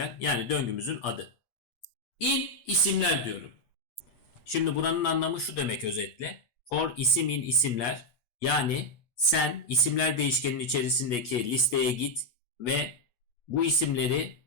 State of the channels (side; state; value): right; late; 8.3 ms